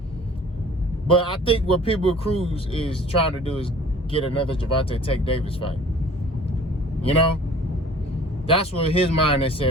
But I think what Pitbull Cruz is trying to do is get another Gervonta Tank Davis fight. That's what his mind is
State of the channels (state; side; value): normal; both; correlation 0.49